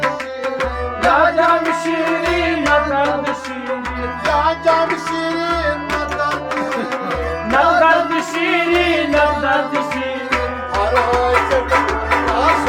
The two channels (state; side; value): identical; both; correlation 1.00